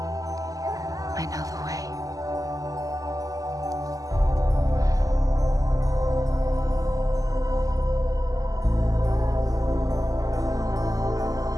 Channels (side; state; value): left; late; 0.17 ms